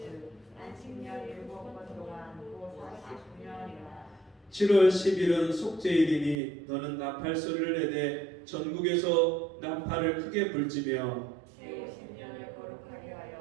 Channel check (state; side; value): drops out; left; at 6.4 s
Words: 안식년 일곱 번 동안 곧 49년이라. 7월 10일은 속죄일이니 너는 나팔 소리를 내되 전국에서 나팔을 크게 불지며 제50년을 거룩하게